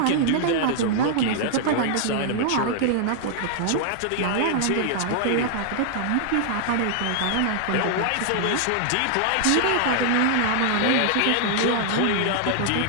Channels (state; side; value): different; both; correlation -0.01